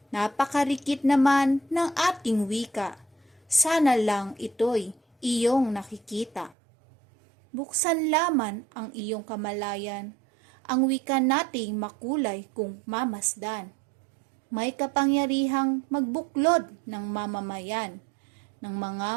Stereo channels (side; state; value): left; drops out; at 6.6 s